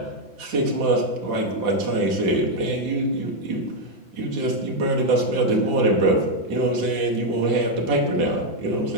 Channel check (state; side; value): late; left; 5.9 ms